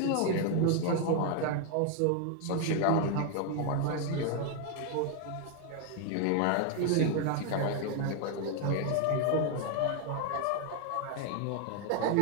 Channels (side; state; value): both; different; correlation 0.00